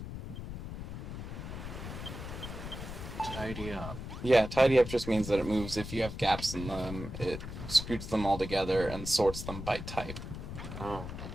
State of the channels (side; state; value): left; noise; rumble, 8 dB below the sound